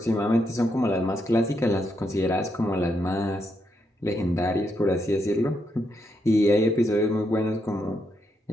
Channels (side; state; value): both; normal; correlation 0.80